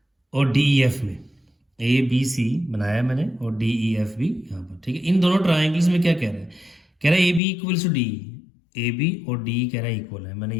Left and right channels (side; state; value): right; drops out; at 7.4 s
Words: और डी ई एफ में, ए बी सी बनाया मैंने और डी ई एफ भी यहाँ पर, ठीक है। इन दोनों ट्राइंगल्स में क्या कह रहा है, कह रहा है A B equals to D, A B और डी कह रहा है इक्वल है, मैंने